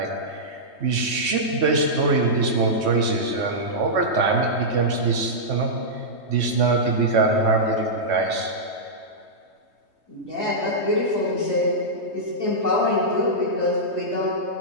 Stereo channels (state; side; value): late; left; 3.2 ms